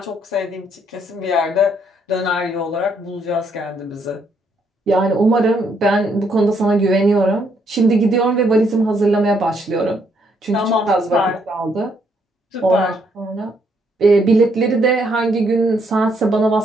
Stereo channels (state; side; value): normal; both; correlation 0.72